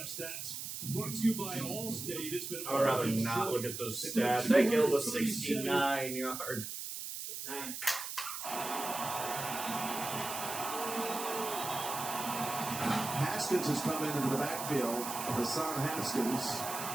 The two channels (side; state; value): right; noise; hiss, 6 dB below the sound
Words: stats, brought to you by Allstate. It's been. I'd rather not look at those stats. They killed a 69 yards. 9. Haskins has come into the backfield. Hassan Haskins.